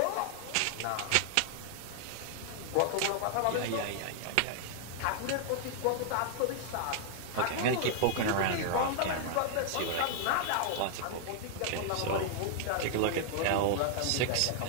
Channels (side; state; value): both; different; correlation 0.00